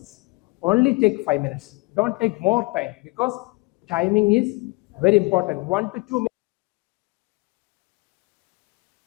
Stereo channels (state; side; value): quieter; right; 26.0 dB